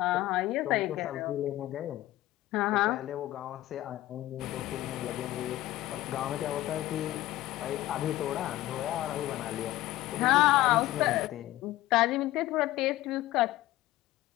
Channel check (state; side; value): quieter; right; 15.9 dB